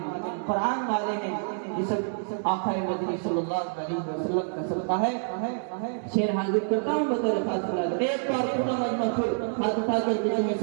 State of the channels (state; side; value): silent; left; digital silence